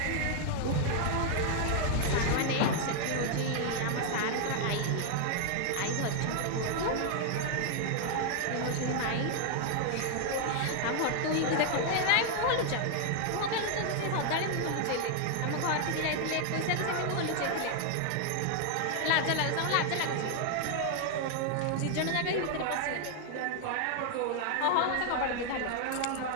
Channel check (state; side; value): different; both; correlation 0.00